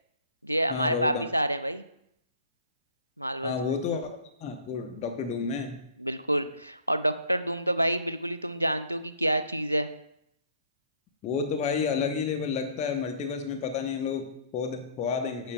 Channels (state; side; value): inverted; both; correlation -0.54